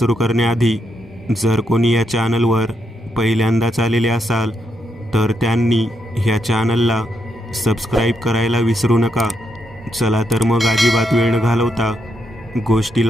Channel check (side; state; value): both; normal; correlation 0.80